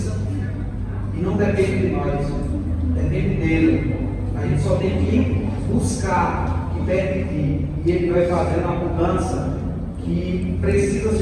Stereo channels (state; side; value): identical; both; correlation 1.00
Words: E não depende de nós, depende dele. A gente só tem que buscar e permitir. E Ele vai fazendo a mudança que precisa